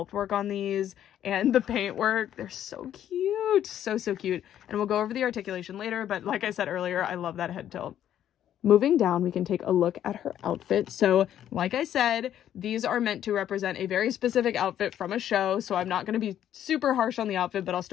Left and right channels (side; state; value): right; quieter; 10.8 dB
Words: work on these and the paint work. They're so cute. So, so cute. And we'll go over the articulation later, but like I said earlier, I love that head tilt. Moving down, we can take a look at her outfit. So like I said, these are meant to represent a very specific outfit from a show. So I'm not going to be super harsh on the outfit, but I'll